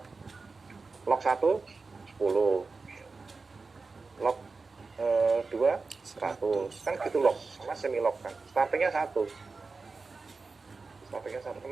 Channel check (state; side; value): quieter; left; 4.2 dB